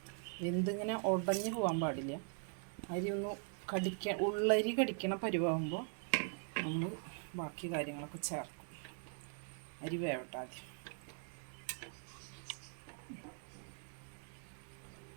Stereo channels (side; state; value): left; silent; 50 dB below the other